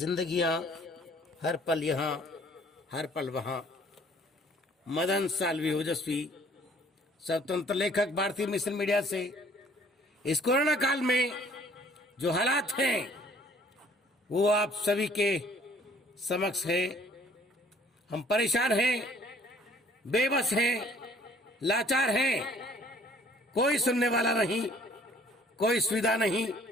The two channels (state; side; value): normal; both; correlation 0.57